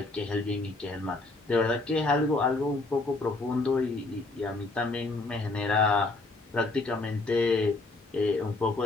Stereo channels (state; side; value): quieter; right; 3.2 dB